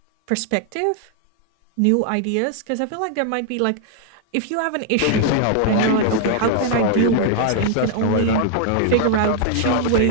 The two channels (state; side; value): different; both; correlation 0.00